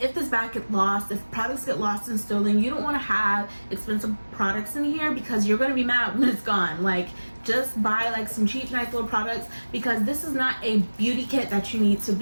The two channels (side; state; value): both; inverted; correlation -1.00